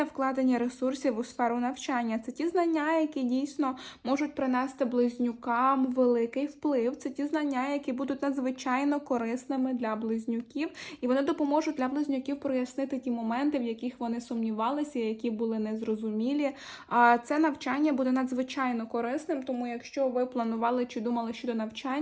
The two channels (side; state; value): both; identical; correlation 1.00